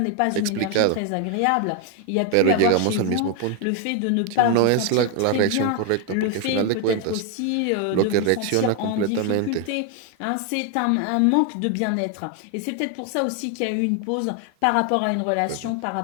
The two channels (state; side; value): different; both; correlation 0.01